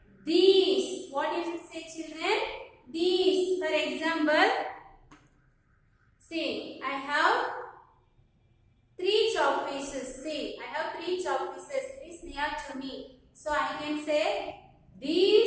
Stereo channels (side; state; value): both; identical; correlation 1.00